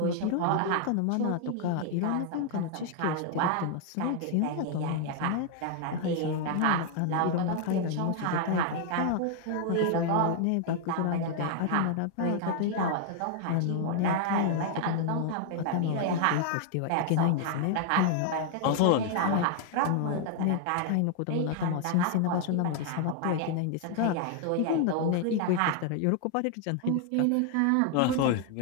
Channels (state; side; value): different; both; correlation 0.00